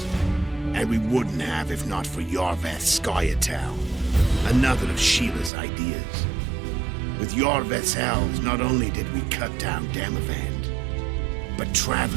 And we wouldn't have if not for Yorveth Scoia'tael, another of Sheila's ideas. With Yorveth's elves, not only did we cut down Demavend, but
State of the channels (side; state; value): left; drops out; at 5.5 s